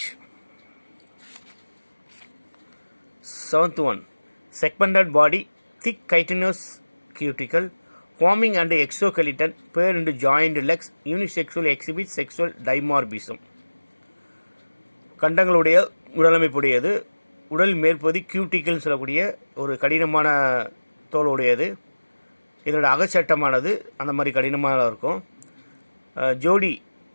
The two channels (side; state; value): both; inverted; correlation -1.00